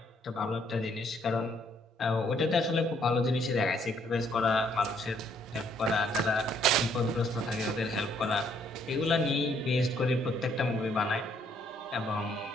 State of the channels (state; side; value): normal; both; correlation 0.67